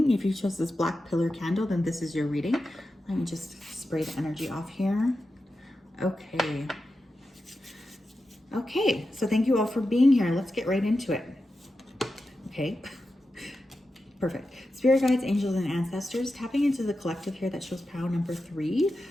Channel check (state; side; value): normal; both; correlation 0.91